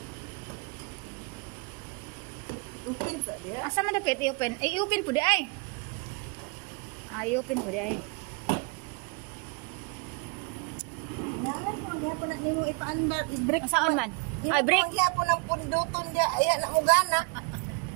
Open sa diha. Asa man dapat i-open? I-open po di ay. I-open po di ay. Gyapon na nimo ipaandar, i-break. Saan man? Ay, break. Gyapon ang punduton diha, aya na mo gana.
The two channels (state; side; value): quieter; left; 32.4 dB